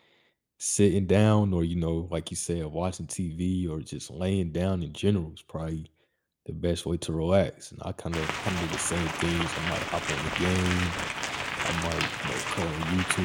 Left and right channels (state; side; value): identical; both; correlation 1.00